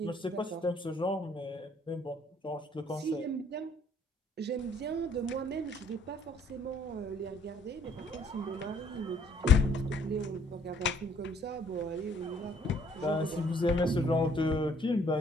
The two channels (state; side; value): normal; both; correlation 0.62